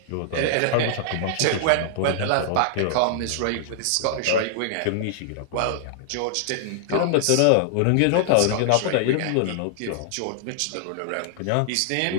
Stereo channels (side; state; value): both; different; correlation -0.01